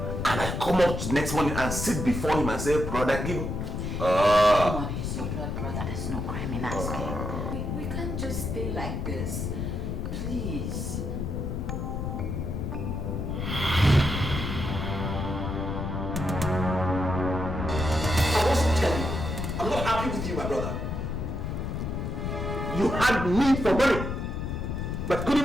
And I come up next morning and sit before him and say, brother, give me. Come on, he's your blood brother. There's no crime in asking. We can't just stay like this. Please. I'm not happy with you, my brother. You had me for money, but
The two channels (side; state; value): left; noise; rumble, 3 dB below the sound